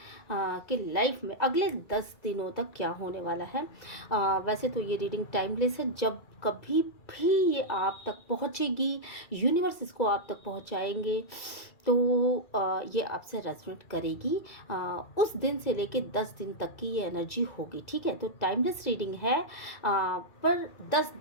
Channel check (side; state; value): right; late; 2.4 ms